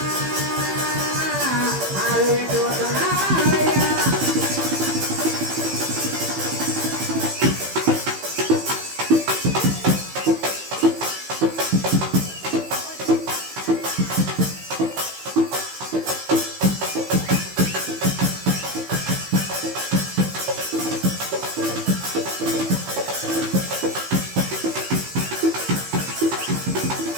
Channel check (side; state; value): left; late; 15 ms